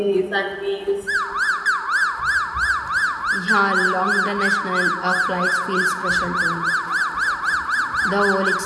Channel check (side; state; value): both; identical; correlation 1.00